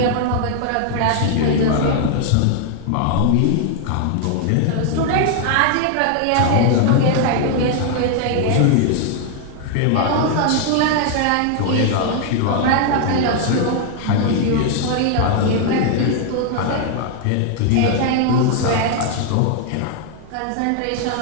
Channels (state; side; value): different; both; correlation 0.00